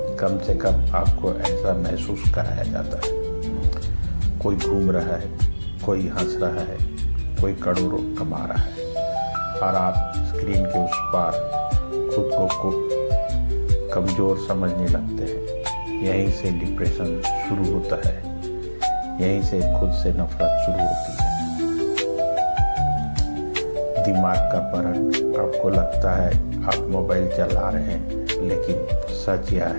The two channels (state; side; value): inverted; both; correlation -1.00